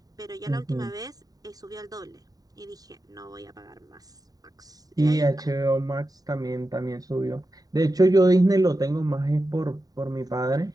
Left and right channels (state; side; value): late; left; 0.18 ms